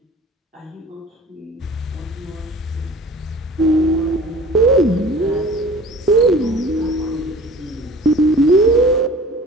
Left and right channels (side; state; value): both; normal; correlation 0.44